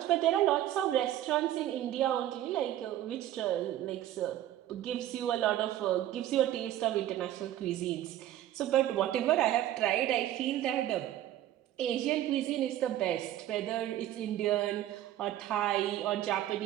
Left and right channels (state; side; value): quieter; left; 12.8 dB